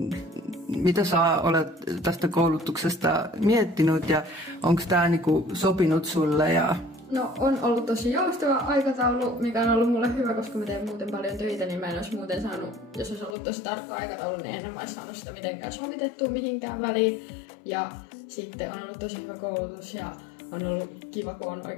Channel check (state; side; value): drops out; right; at 13.4 s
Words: sä olet tästä koulutuksesta miettinyt ja onko tämä niinku sopinut sulle? No on ollut tosi joustava aikataulu, mikä on ollut mulle hyvä, koska mä teen muuten paljon töitä, niin mä en olisi muuten saanut, jos olisi ollut tosi tarkka aikataulu, niin en olisi saanut sitä mitenkään sovitettua mihinkään väliin. Ja sitten on ollut tosi hyvä koulutus ja on ollut kiva, kun on